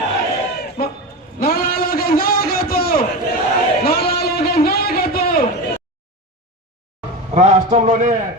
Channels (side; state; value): both; normal; correlation 0.23